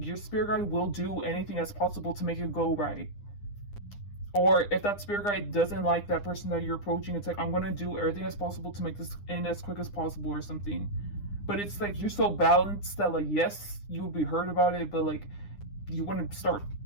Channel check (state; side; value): late; right; 9.9 ms